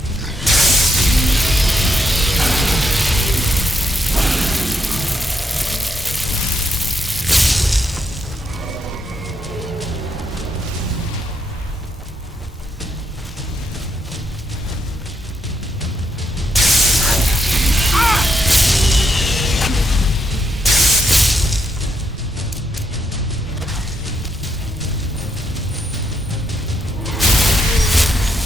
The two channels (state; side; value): normal; both; correlation 0.79